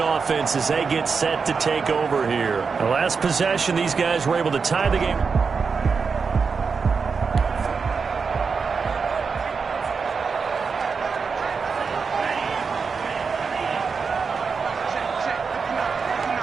as they get set to take over here. The last possession, these guys were able to tie the game.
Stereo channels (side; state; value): left; quieter; 5.3 dB